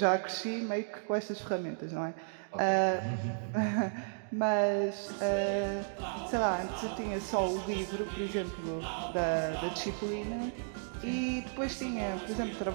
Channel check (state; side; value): silent; left; digital silence